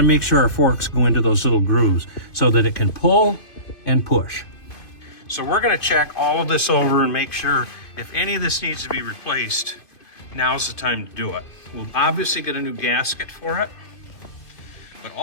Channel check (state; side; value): late; right; 2.5 ms